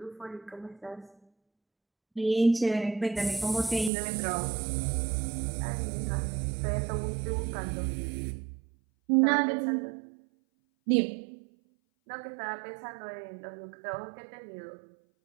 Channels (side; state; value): left; drops out; at 3.9 s